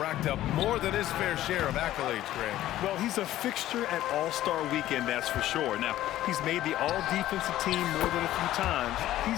up more than his fair share of accolades, Greg. Well, he's a fixture at All-Star Weekend, that's for sure. Now, he's made the All-Defensive team more than a few times.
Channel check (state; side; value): quieter; right; 14.0 dB